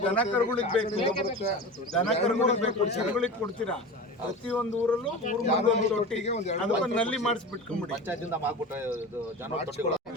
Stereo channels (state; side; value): normal; both; correlation 0.31